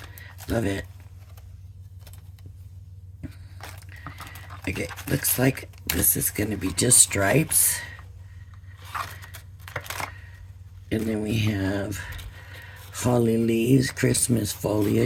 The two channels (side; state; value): both; identical; correlation 1.00